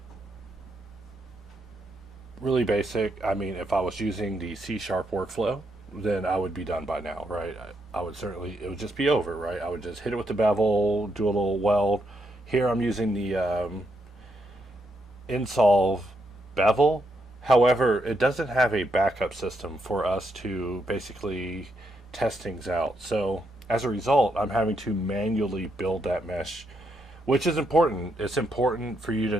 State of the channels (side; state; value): both; normal; correlation 0.79